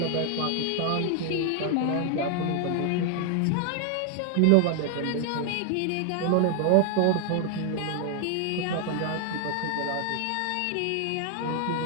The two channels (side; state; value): both; different; correlation 0.00